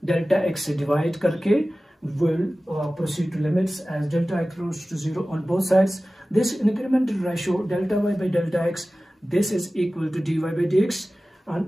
delta x से divide करके will proceed to limits as delta x goes to 0 on both sides. This incremental ratio delta y by delta x, this is equal to dy by dx,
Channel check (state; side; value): normal; both; correlation 0.96